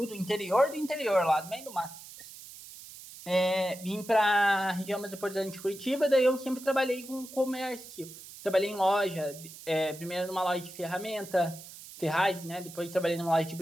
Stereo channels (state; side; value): noise; right; hiss, 16 dB below the sound